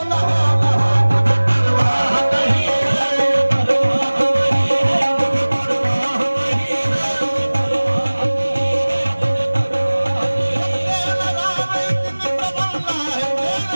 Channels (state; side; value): inverted; both; correlation -1.00